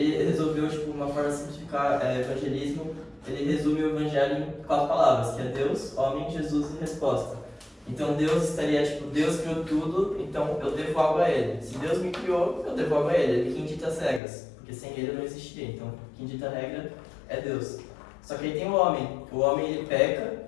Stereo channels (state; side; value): drops out; right; at 14.2 s